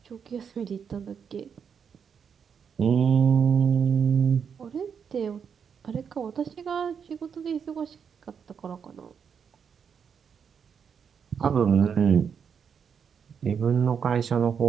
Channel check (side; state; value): left; quieter; 7.0 dB